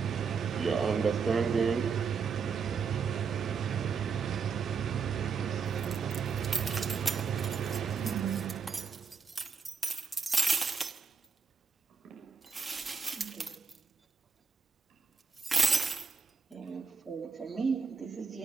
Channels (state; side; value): quieter; left; 5.6 dB